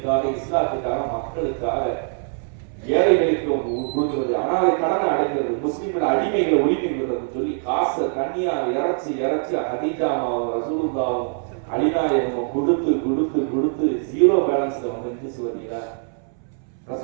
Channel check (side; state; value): left; silent; 63 dB below the other